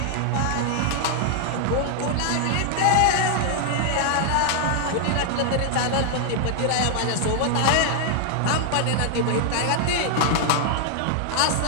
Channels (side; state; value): both; different; correlation 0.00